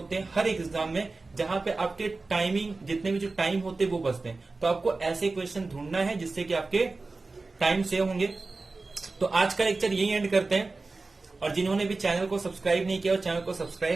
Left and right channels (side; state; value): left; quieter; 3.6 dB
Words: हैं हर एक एग्जाम में, जहां पे आपके टाइमिंग जितने भी जो टाइम होते हैं वो बचते हैं। तो आपको ऐसे क्वेश्चन ढूंढना है जिससे कि आपके टाइम सेव होंगे। तो आज का लेक्चर यही एंड करते हैं, और जिन्होंने भी चैनल को सब्सक्राइब नहीं किया, चैनल को